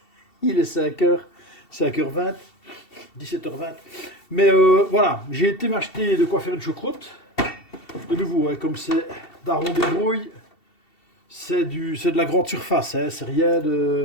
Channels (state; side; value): late; right; 2.7 ms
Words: il est 5h, 5h20, 17h20. Mais voilà, j'ai été m'acheter de quoi faire une choucroute. De nouveau, hein, comme c'est daron débrouille, c'est de la grande surface, hein, c'est rien